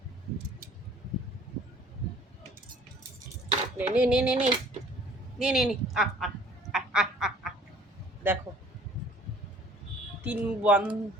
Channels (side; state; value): both; normal; correlation 0.54